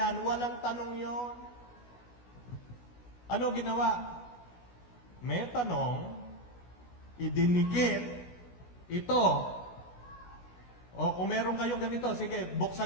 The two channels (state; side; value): late; right; 16 ms